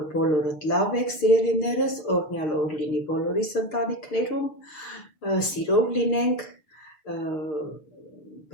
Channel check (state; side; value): late; right; 6.6 ms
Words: բոլորդ լավ եք սիրելիներս, օրհնյալ օր լինի բոլորիս ընտանիքներում, սիրով լինենք,